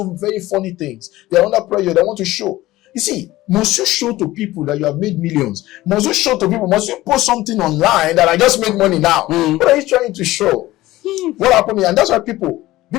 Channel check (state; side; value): quieter; right; 17.1 dB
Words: very funny things. They are under pressure. They want to show. You see, must you show to people that you have made millions? Must you show to people? Must you post something online that I just made money now? What are you trying to show? What happened here? And that's why people